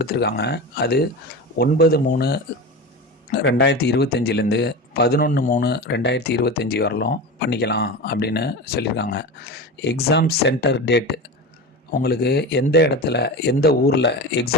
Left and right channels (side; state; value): both; normal; correlation 0.27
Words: அது 9/3/2025லேருந்து 11/3/2025 வரலும் பண்ணிக்கலாம் அப்படின்னு சொல்லியிருக்காங்க. எக்ஸாம் சென்டர் டேட் உங்களுக்கு எந்த இடத்துல எந்த ஊரில்